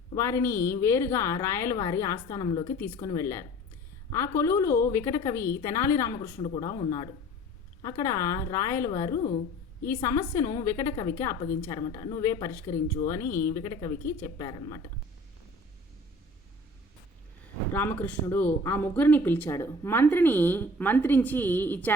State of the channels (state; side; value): normal; both; correlation 0.46